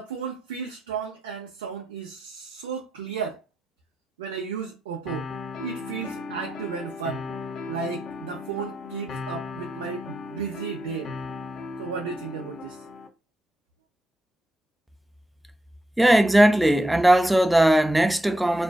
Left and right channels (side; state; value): both; normal; correlation 0.85